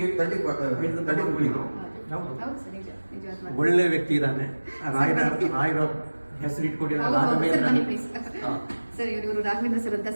ತರ್ಟಿ ಹೇಳಿದ ಹೌದು ಸರ್, ನಿಜವಾದ ಮಾತು. ಒಳ್ಳೆ ವ್ಯಕ್ತಿ ಇದ್ದಾನೆ. ರಾಯರ ಹೆಸರು ಇಟ್ಕೊಂಡಿರೋ ಹೌದು, ಹೌದು ಸರ್, ಬನ್ನಿ ರಾಘವೇಂದ್ರ. ಪ್ಲೀಸ್. ಸರ್ ಇವರು ರಾಘವೇಂದ್ರ ಸರ್ ಅಂತ.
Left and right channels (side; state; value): both; inverted; correlation -1.00